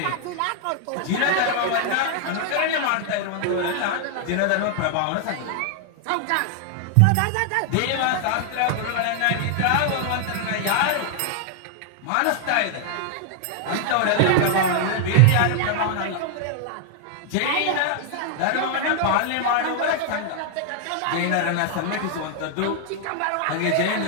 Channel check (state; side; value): different; both; correlation 0.00